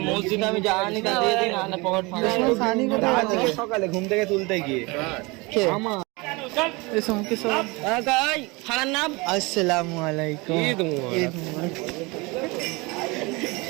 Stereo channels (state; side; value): quieter; left; 25.7 dB